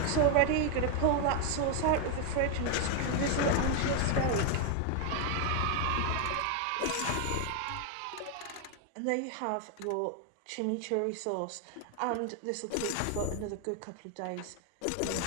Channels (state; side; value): different; both; correlation 0.01